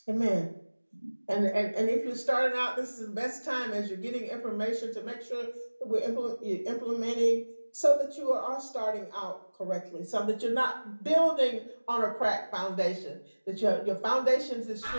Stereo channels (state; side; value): inverted; both; correlation -1.00